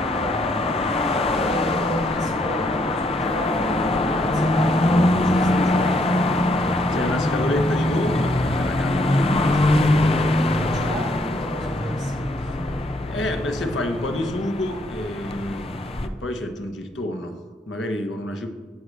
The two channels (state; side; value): normal; both; correlation 0.71